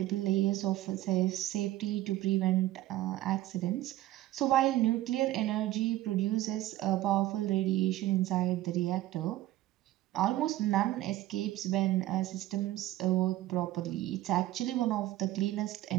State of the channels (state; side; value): quieter; left; 15.2 dB